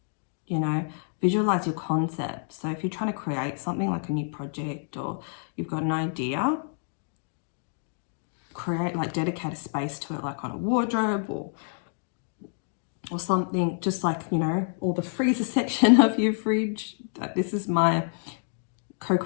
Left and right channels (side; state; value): right; silent; 59 dB below the other